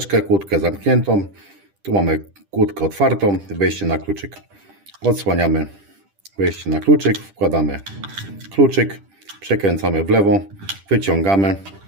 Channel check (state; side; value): late; left; 10 ms